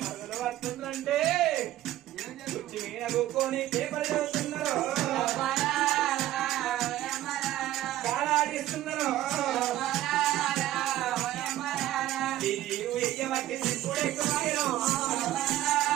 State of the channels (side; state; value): left; quieter; 14.1 dB